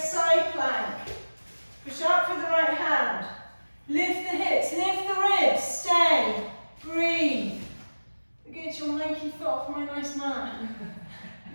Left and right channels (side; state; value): both; inverted; correlation -1.00